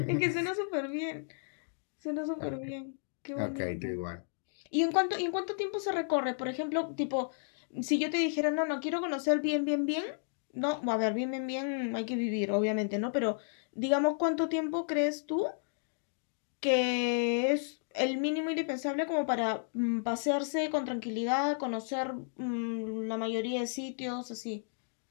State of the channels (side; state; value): right; silent; digital silence